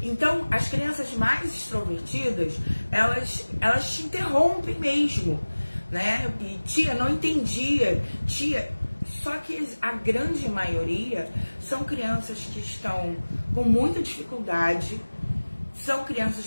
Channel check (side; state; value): both; inverted; correlation -1.00